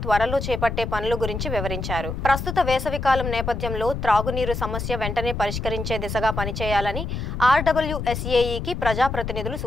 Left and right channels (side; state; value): left; noise; rumble, 4 dB below the sound